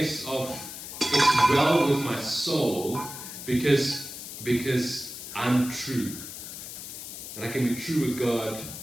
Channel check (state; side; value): noise; left; hiss, 10 dB below the sound